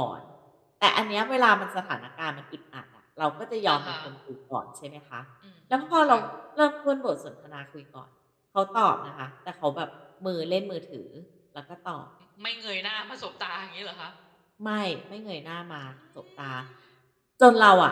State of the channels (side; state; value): both; identical; correlation 1.00